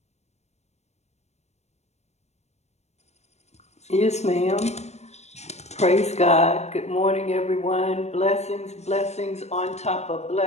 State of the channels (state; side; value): late; right; 0.32 ms